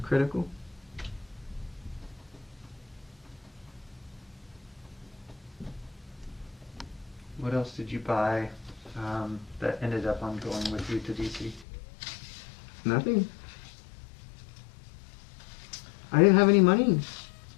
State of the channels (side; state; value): right; drops out; at 11.7 s